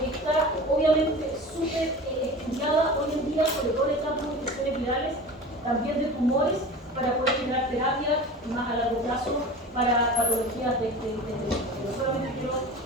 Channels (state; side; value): normal; both; correlation 0.35